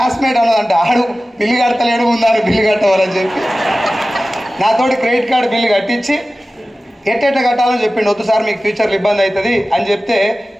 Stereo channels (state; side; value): normal; both; correlation 0.96